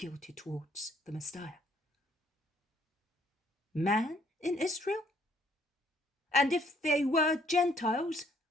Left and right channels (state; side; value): normal; both; correlation 0.66